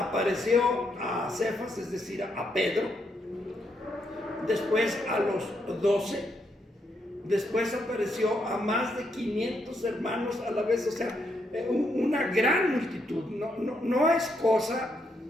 a Cefas, es decir, a Pedro, después a los 12, después apareció a más de 500 hermanos a la vez. O sea, una gran multitud. No es cosa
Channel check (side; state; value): both; normal; correlation 0.78